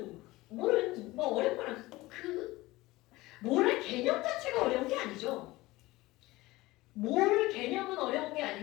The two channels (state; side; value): quieter; right; 19.4 dB